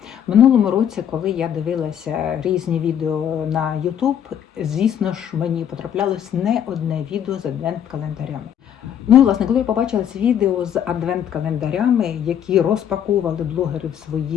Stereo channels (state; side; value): quieter; right; 9.4 dB